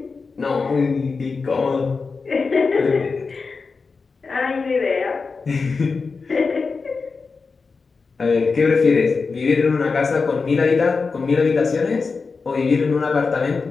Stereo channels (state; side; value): quieter; right; 4.6 dB